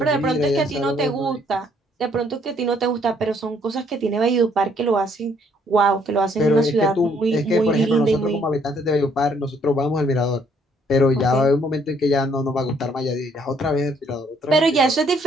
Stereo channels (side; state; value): both; normal; correlation 0.66